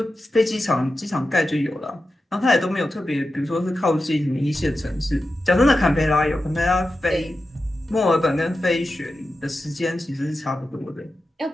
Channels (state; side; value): normal; both; correlation 0.92